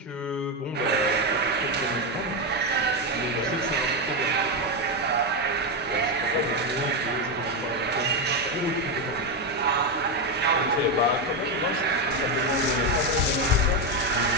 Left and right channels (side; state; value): both; normal; correlation 0.08